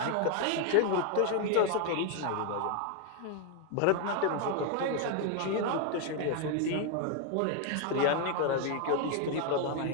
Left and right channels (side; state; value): both; different; correlation 0.01